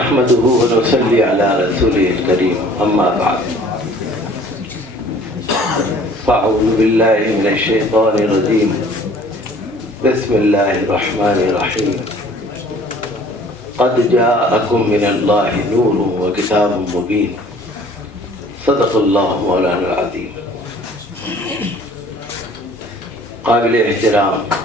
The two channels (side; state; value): both; normal; correlation 0.52